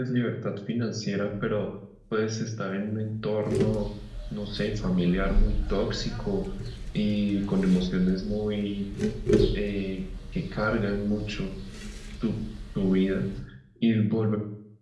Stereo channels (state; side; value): identical; both; correlation 1.00